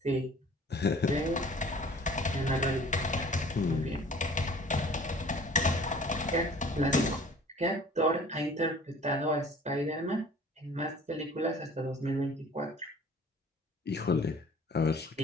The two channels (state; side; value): normal; both; correlation 0.48